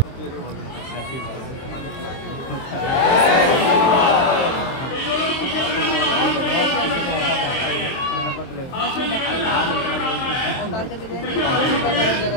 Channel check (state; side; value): late; right; 23 ms